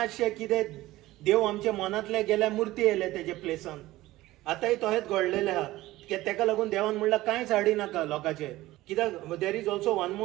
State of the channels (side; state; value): left; quieter; 17.2 dB